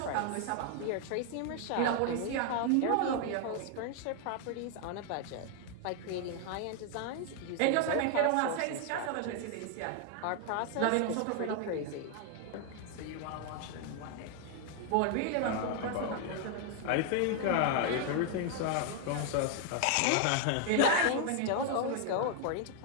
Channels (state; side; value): different; both; correlation 0.00